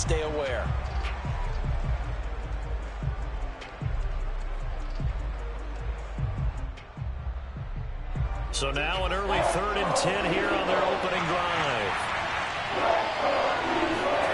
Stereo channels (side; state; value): both; identical; correlation 1.00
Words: aware. So now an early 3rd and 10 here on their opening drive.